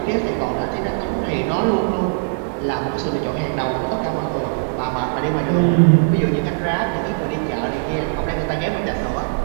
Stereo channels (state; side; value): silent; left; digital silence